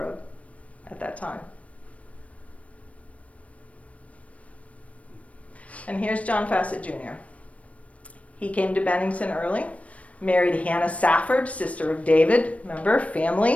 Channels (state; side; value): late; right; 0.065 ms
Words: at that time. And here's John Fassett Jr. He came to Bennington early, married Hannah Safford, sister of David. Remember,